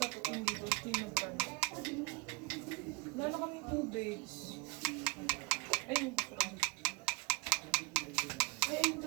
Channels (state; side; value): quieter; left; 25.2 dB